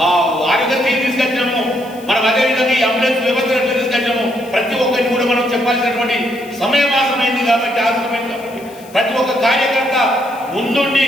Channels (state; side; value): noise; left; hiss, 23 dB below the sound